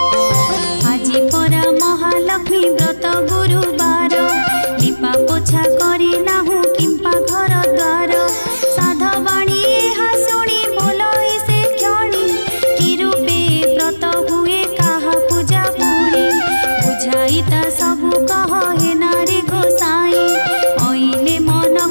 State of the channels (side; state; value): both; inverted; correlation -1.00